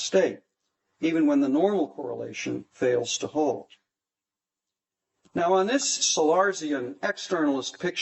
even when the normal correlation fails to hold. Now, on this Sellarsian externalist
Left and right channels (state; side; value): identical; both; correlation 1.00